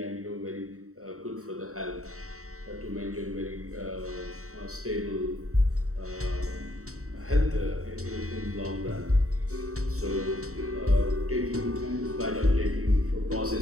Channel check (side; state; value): left; late; 0.64 ms